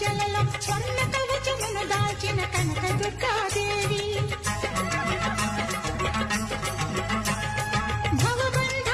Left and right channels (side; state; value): both; identical; correlation 1.00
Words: స్వర్ణ కవచమును దాల్చిన కనక దుర్గాదేవి